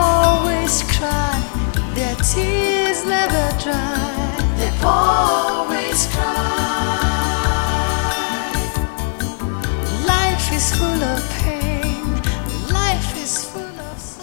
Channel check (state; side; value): silent; right; 67 dB below the other